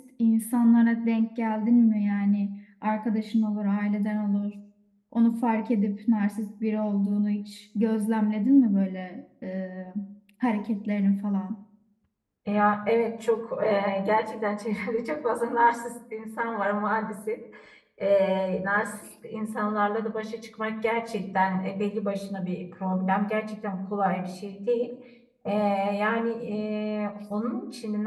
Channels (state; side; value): identical; both; correlation 1.00